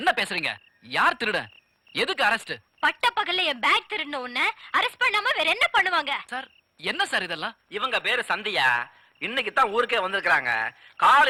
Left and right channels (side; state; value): both; identical; correlation 1.00